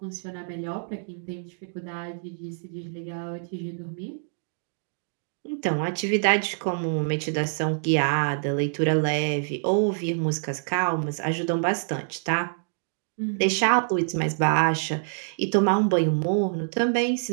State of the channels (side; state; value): left; silent; digital silence